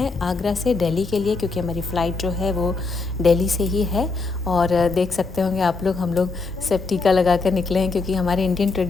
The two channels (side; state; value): right; quieter; 4.0 dB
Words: आगरा से दिल्ली के लिए, क्योंकि हमारी फ़्लाइट जो है वो दिल्ली से ही है। और देख सकते होंगे आप लोग, हम लोग सब टीका लगा कर निकले हैं, क्योंकि हमारे इंडियन